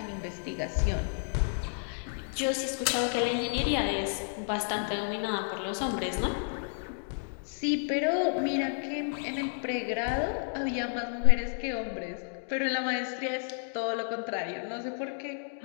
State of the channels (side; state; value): right; silent; digital silence